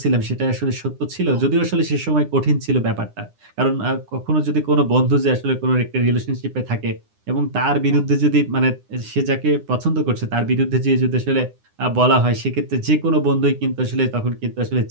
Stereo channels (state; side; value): late; left; 9.8 ms